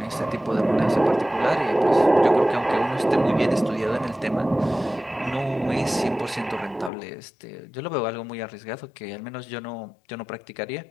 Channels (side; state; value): right; drops out; at 6.9 s